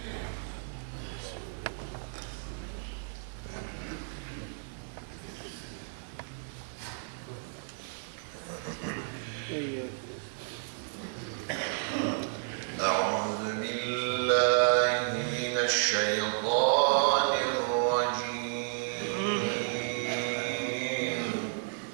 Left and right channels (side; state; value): left; silent; digital silence